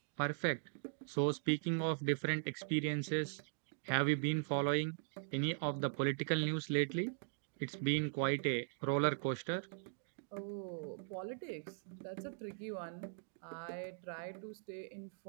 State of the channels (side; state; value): left; silent; digital silence